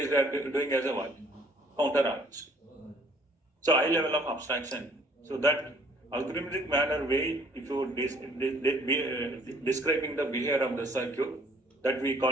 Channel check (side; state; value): both; normal; correlation 0.59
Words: doing as a what? Counter arranged. So high level of abstraction. So that algorithmic manner way, if you describing the behavior of the circuit, that we